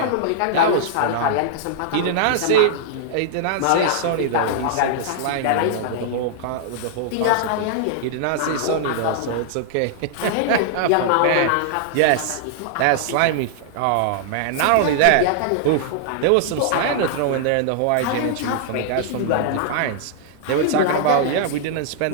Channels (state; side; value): different; both; correlation -0.01